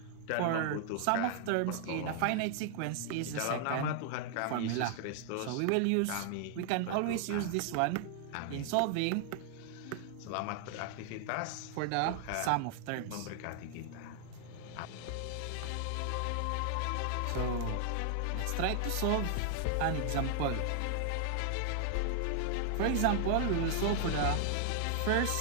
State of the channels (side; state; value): both; different; correlation 0.00